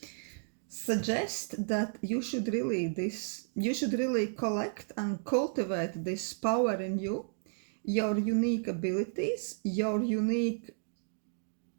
suggest that you should really collect and cultivate this power in you, your unique abilities, your unique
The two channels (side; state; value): left; silent; digital silence